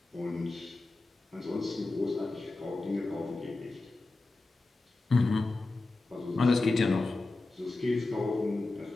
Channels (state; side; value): quieter; right; 3.2 dB